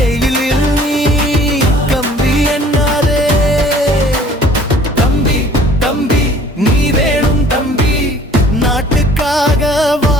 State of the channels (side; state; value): both; normal; correlation 0.53